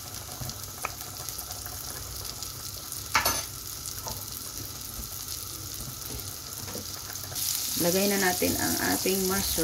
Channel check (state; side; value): identical; both; correlation 1.00